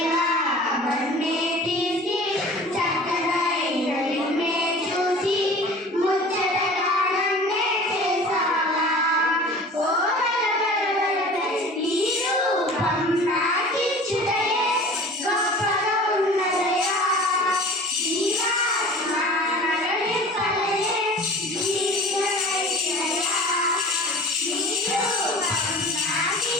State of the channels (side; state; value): both; normal; correlation 0.42